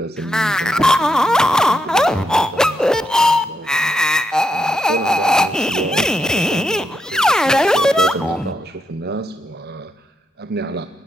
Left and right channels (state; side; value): normal; both; correlation 0.80